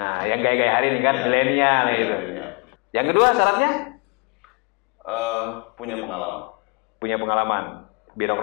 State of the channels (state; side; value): quieter; right; 32.6 dB